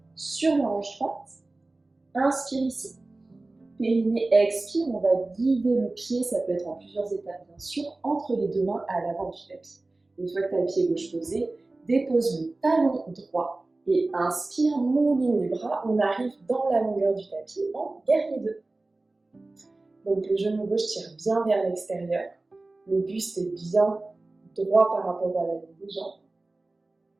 sur la hanche droite. Inspire ici. Périnée, expire, on va guider le pied, ça peut être en plusieurs étapes bien sûr, entre les deux mains à l'avant du tapis. Une fois que tu as le pied gauche posé, dépose le talon droit et inspire, mouline les bras, on arrive dans la longueur du tapis en guerrier 2. Donc le genou gauche tire bien vers l'extérieur, le buste est bien droit par rapport à la ligne des jambes.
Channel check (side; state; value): left; quieter; 3.1 dB